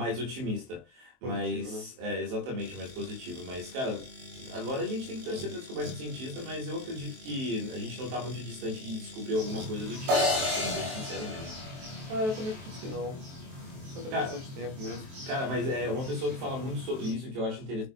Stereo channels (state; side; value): late; left; 23 ms